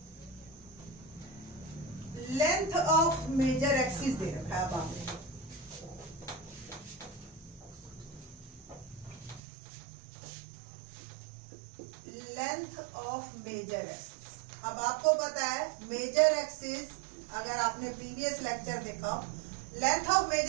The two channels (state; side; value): drops out; left; at 9.4 s